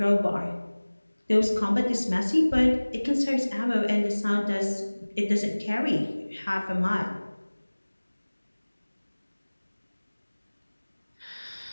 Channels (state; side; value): inverted; both; correlation -1.00